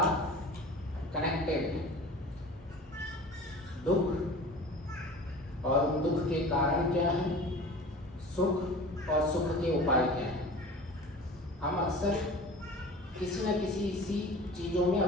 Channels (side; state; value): both; normal; correlation 0.39